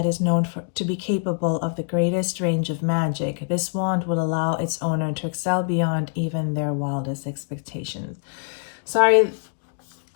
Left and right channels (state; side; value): silent; right; 62 dB below the other